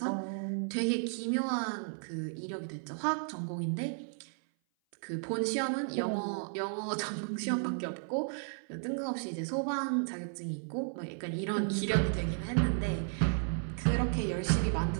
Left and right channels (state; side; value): silent; left; 55 dB below the other